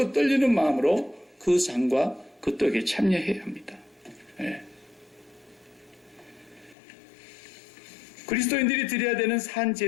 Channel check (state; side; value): drops out; right; at 6.8 s